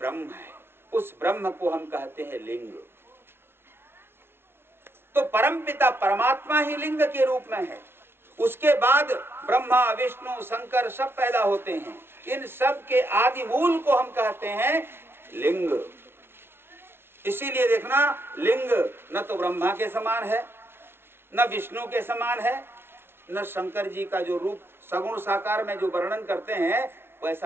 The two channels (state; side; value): late; left; 0.11 ms